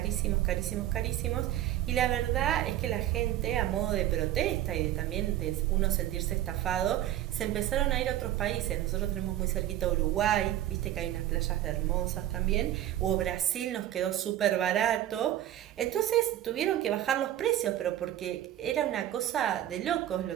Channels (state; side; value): quieter; left; 12.8 dB